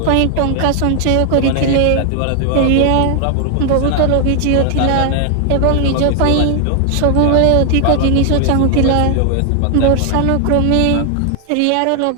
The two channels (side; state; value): both; different; correlation 0.00